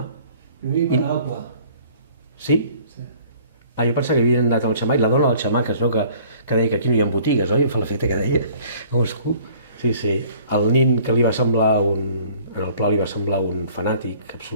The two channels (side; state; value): both; inverted; correlation -0.54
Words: Primer hi va anar al Pla. Sí? Sí. Jo pensava que havien anat al Xammar, i la dona del Xammar, que es veu que deia que aquí no hi ha botigues, oi? Em fa l'efecte que deia. Sí. El nin que li va semblar en el Pla li va semblar un fanàtic